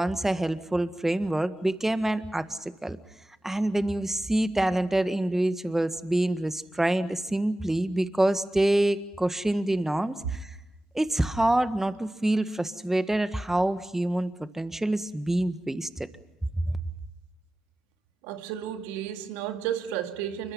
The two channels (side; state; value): both; normal; correlation 0.94